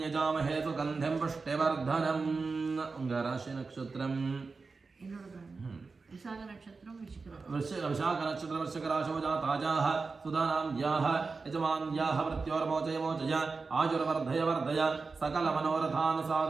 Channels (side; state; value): left; quieter; 4.3 dB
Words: यजामहे सुगन्धिं पुष्टिवर्धनम् राशि नक्षत्रम् विशाख नक्षत्र वृश्चिकराशौ जाताजाः सुधानाम्याः यजमान्याः मृत्योर्मोचय मोचय आयुर्वर्धय वर्धय सकलमनोरथान्